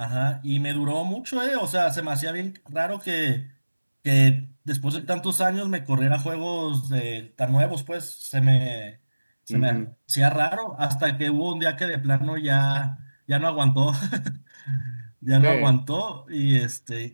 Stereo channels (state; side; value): inverted; both; correlation -1.00